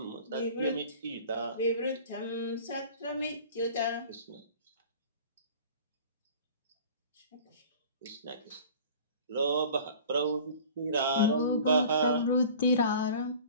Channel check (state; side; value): inverted; both; correlation -0.43